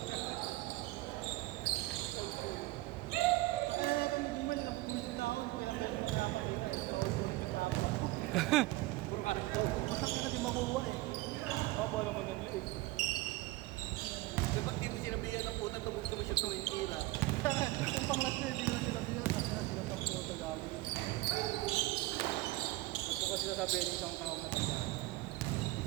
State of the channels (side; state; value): left; quieter; 19.2 dB